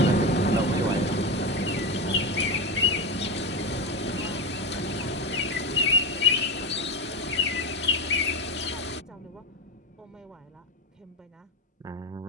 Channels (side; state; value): both; normal; correlation 0.16